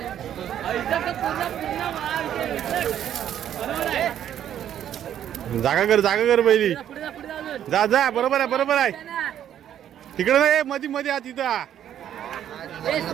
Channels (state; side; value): quieter; left; 10.4 dB